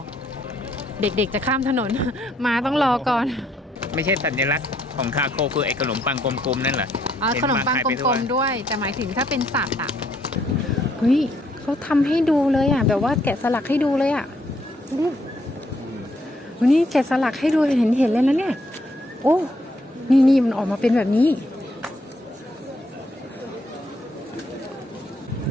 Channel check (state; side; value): normal; both; correlation 0.71